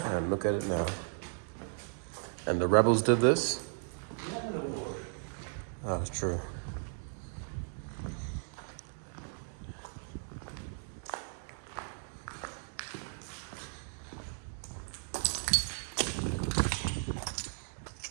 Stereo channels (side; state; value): left; silent; 54 dB below the other